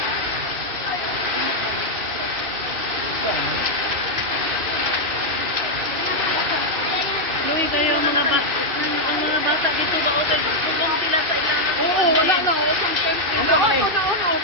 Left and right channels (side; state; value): left; late; 2.6 ms